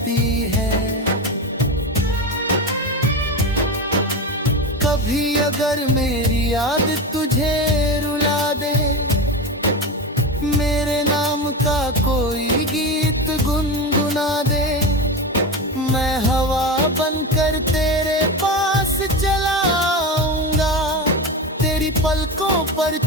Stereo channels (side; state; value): both; normal; correlation 0.21